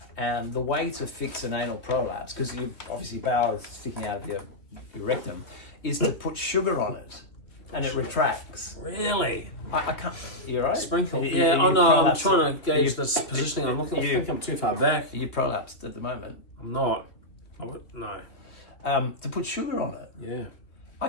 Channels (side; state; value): right; late; 2.9 ms